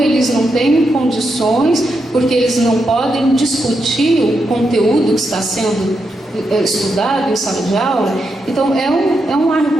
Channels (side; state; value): both; normal; correlation 0.84